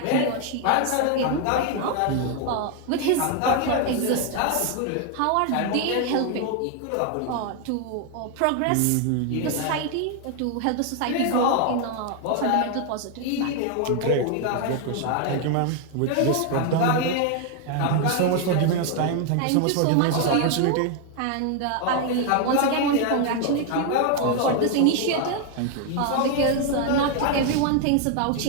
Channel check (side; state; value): both; different; correlation 0.00